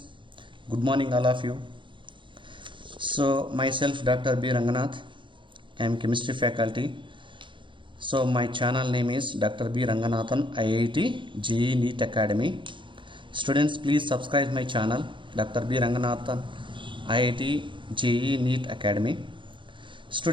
good morning all of you. So myself Dr. B. Ranganath, I am chemistry faculty. So my channel name is Dr. B. Ranganathan IIT JEE NEET Academy. Students, please subscribe my channel Dr. B. Ranganathan IIT JEE NEET Academy.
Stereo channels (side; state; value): left; late; 0.24 ms